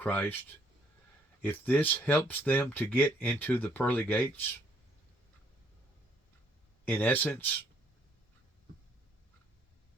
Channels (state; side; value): normal; both; correlation 0.66